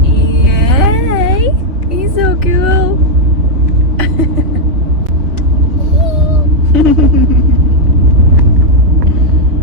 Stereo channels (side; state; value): left; late; 4.2 ms